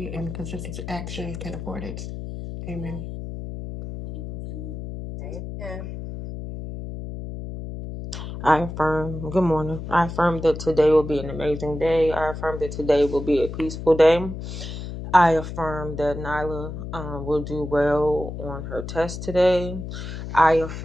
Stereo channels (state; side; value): noise; left; hum, 8 dB below the sound